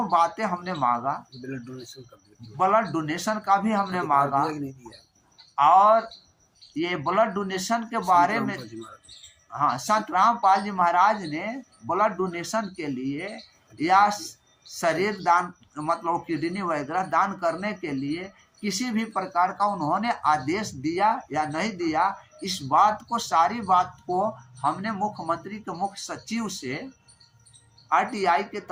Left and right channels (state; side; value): identical; both; correlation 1.00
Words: बातें हमने मांगा। ब्लड डोनेशन का भी हमने मांगा, और ये ब्लड डोनेशन के बारे में संत रामपाल जी महाराज ने ब्लड डोनेशन के लिए या शरीर दान मतलब किडनी वगैरह दान करने के लिए किसी भी प्रकार का उन्होंने आदेश दिया या नहीं दिया, इस बात को सारी बात को हमने मुख्यमंत्री के मुख्य सचिव से आरटीआई के